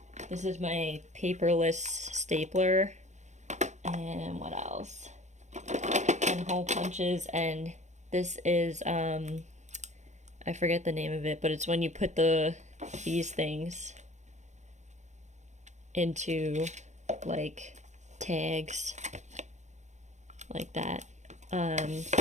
This is my paperless stapler. And what else? And hole punches. And this is I forget the name of it, but it's when you put these things into like tags like that.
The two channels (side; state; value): left; late; 0.34 ms